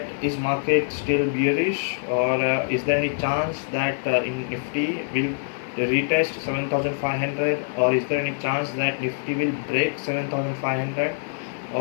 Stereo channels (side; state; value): right; silent; 62 dB below the other